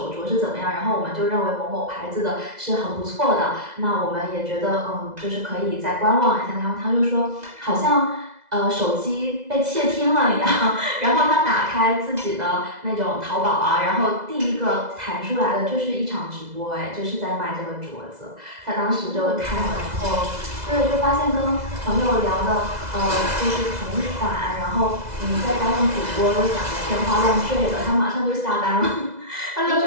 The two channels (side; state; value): left; late; 2.0 ms